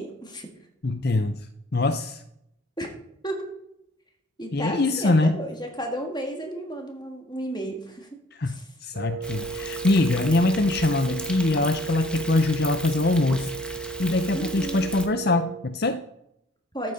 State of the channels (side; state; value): both; normal; correlation 0.58